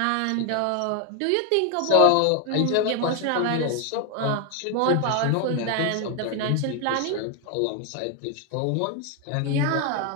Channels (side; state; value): both; different; correlation 0.00